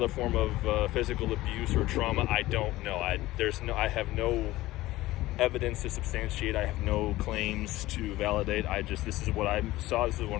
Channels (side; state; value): right; quieter; 17.4 dB